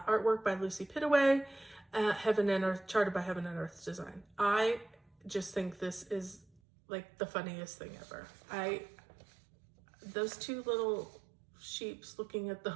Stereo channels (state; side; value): drops out; left; at 6.6 s